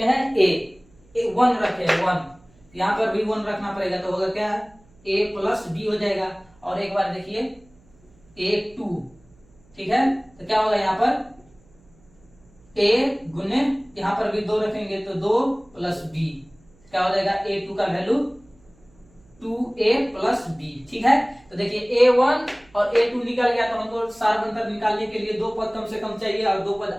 हैं a 1 रखे हैं 1, यहाँ पर भी 1 रखना पड़ेगा, तो होगा क्या a प्लस b हो जाएगा। और एक बार देखिए a2, ठीक है, तो क्या होगा यहाँ पर a गुने यहाँ पर भी 2 रखेंगे तो 2 प्लस b, क्या हो जाएगा a2 का वैल्यू 2a प्लस b। ठीक है, तो देखिए a1 और a2 निकल गया, तो हमको सार अंतर निकालने के लिए दो पद कम से कम चाहिए और दो पद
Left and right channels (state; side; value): noise; right; hum, 30 dB below the sound